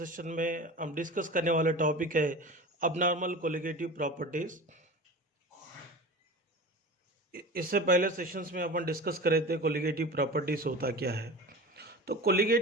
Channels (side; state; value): both; normal; correlation 0.33